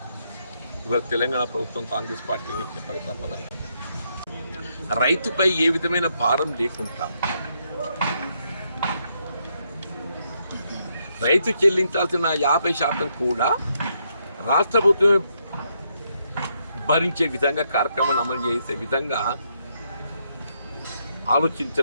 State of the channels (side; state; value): both; inverted; correlation -0.77